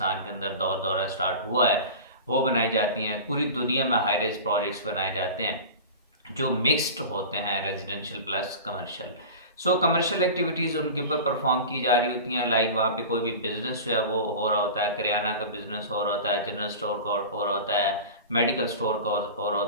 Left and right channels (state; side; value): inverted; both; correlation -0.33